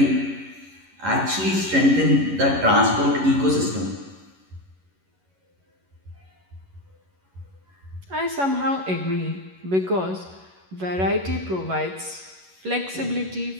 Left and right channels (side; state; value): left; late; 11 ms